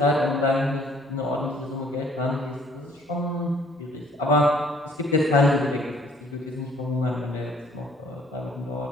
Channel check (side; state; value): both; normal; correlation 0.59